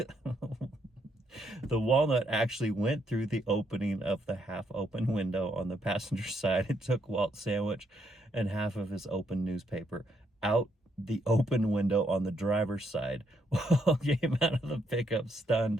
the walnut actually went through the opening of the half-open window on the passenger side. It took Walt's sandwich and half of his open newspaper out the open window on the driver's side. Walt came out of the pickup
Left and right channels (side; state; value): both; normal; correlation 0.75